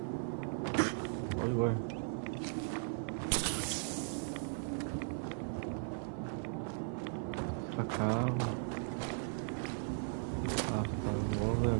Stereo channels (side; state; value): left; silent; 53 dB below the other